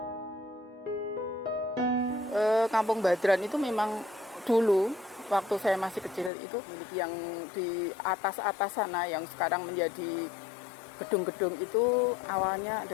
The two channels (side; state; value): right; drops out; at 6.3 s